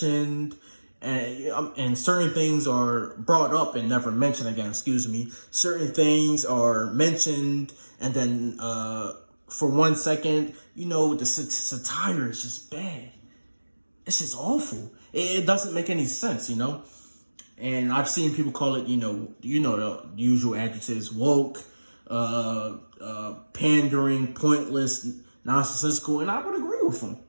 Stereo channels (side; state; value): both; inverted; correlation -1.00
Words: and certain things are brought up and never mentioned again. Certain things are mentioned, and then for 1 second, the satire is just bad. It's just awful. It doesn't make any sense, And I've seen people call it, the usual adjectives: woke, pandering, pointless, nonsensical, and I would agree with them.